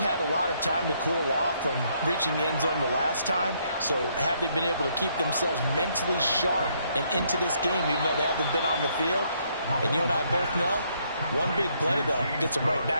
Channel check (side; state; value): both; inverted; correlation -0.71